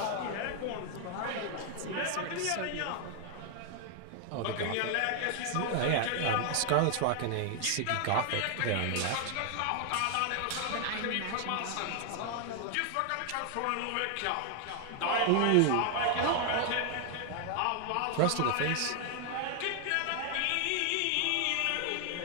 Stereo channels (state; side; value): different; both; correlation 0.00